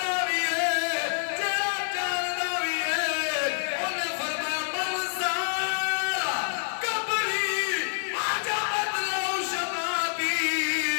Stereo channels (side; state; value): right; silent; digital silence